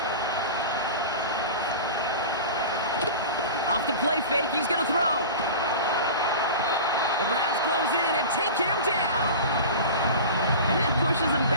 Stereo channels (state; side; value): inverted; both; correlation -0.33